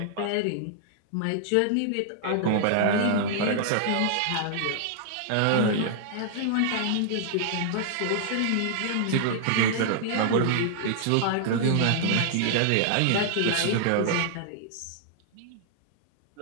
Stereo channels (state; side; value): different; both; correlation -0.01